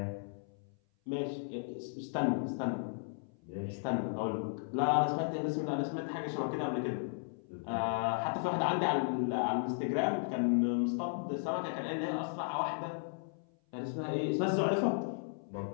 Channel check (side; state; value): right; silent; 54 dB below the other